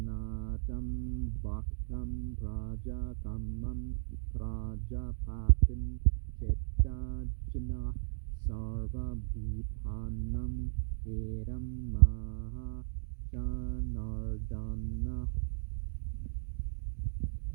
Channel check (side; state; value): left; silent; digital silence